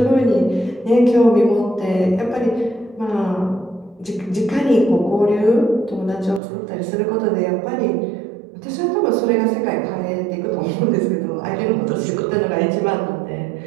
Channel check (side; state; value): left; drops out; at 6.4 s